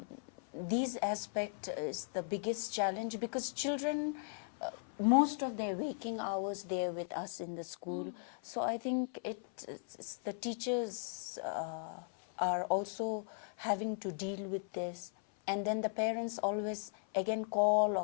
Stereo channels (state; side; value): silent; right; 53 dB below the other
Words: these aspect is the biggest challenge, because children, most of their waking hours, they're with us in the school. So I think it's the teachers are also having to deal with this. And then the parents always again call or